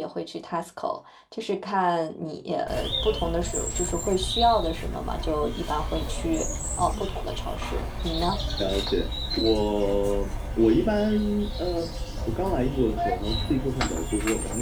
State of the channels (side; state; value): both; identical; correlation 1.00